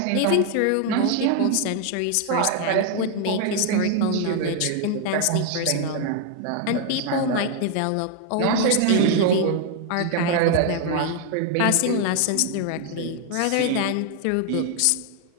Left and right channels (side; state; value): both; different; correlation 0.00